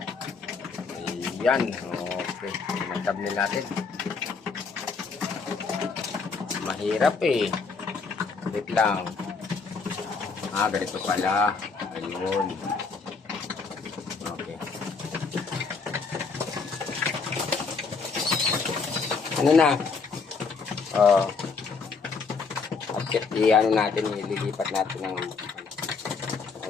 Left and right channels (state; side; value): quieter; right; 4.8 dB